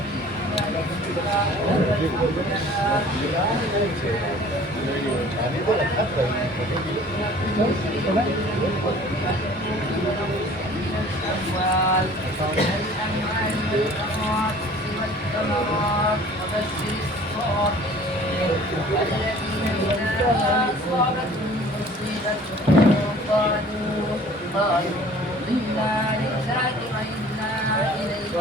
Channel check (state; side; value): normal; both; correlation 0.49